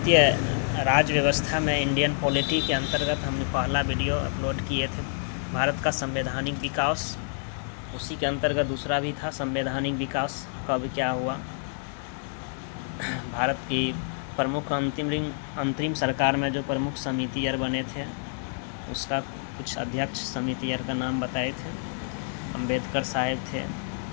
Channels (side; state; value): right; silent; digital silence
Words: राज व्यवस्था में इंडियन पॉलिटी के अंतर्गत हमने पहला वीडियो अपलोड किए थे। भारत का संवैधानिक विकास, उसी के अंतर्गत दूसरा भी था संवैधानिक विकास कब क्या हुआ। भारत की प्रमुख अंतरिम सरकार में जो प्रमुख समितियर बने थे उसका कुछ अध्यक्ष समितियर का नाम बताए थे। अंबेडकर साहब थे